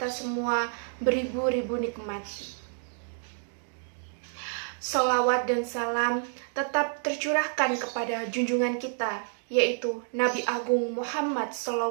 semua beribu-ribu nikmat. Salawat dan salam tetap tercurahkan kepada junjungan kita, yaitu Nabi Agung Muhammad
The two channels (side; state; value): left; silent; digital silence